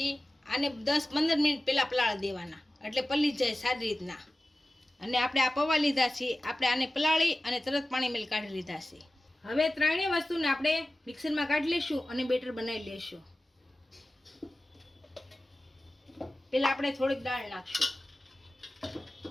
આને 10-15 મિનિટ પહેલા પલાળી દેવાના એટલે પલળી જાય સારી રીતના। અને આપણે આ પૌવા લીધા છે, આપણે આને પલાળી અને તરત પાણી મેલ કાઢી લીધા છે। હવે ત્રણેય વસ્તુને આપણે મિક્સરમાં કાઢી લઈશું અને બેટર બનાવી લઈશું। પેલા આપણે થોડીક દાળ નાખશું,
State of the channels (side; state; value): both; normal; correlation 0.96